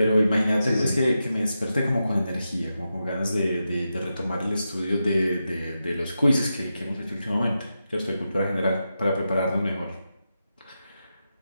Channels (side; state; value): both; inverted; correlation -0.89